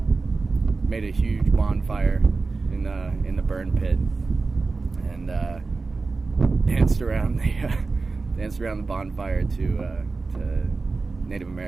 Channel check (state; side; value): quieter; left; 3.9 dB